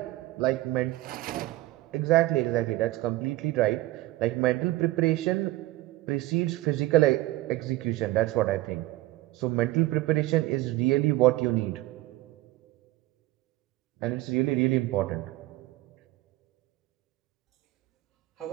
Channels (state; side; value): quieter; left; 17.4 dB